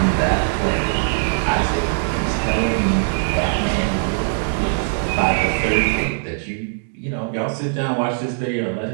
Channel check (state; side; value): silent; left; 63 dB below the other